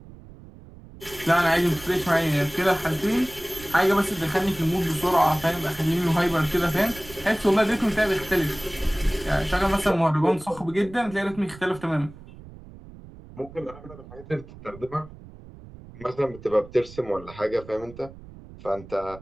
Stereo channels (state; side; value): noise; right; rumble, 18 dB below the sound